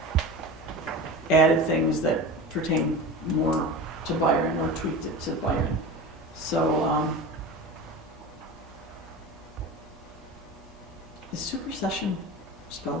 added things that pertain more to Byron, or tweaked it to Byron. So, is supersession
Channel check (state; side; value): normal; both; correlation 0.30